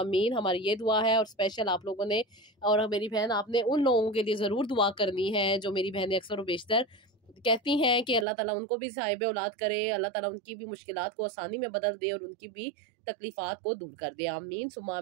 हमारी ये दुआ है, और स्पेशल आप लोगों ने और मेरी बहन आपने उन लोगों के लिए ज़रूर दुआ करनी है जो मेरी बहनें अक्सर व बेशतर कहती हैं कि अल्लाह ताला उनको भी साहिब औलाद करे, अल्लाह ताला उनकी भी मुश्किलात को आसानी में बदल दे और उनकी भी तकलीफ़ात को दूर कर दे। आमीन सुम्मा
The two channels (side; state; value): left; drops out; at 8.2 s